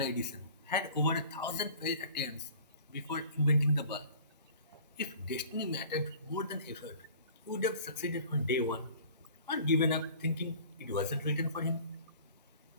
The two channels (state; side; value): inverted; both; correlation -0.47